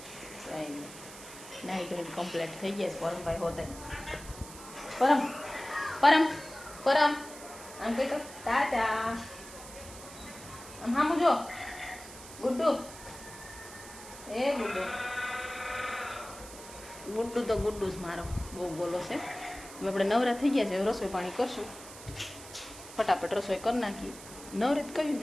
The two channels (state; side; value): noise; right; hiss, 15 dB below the sound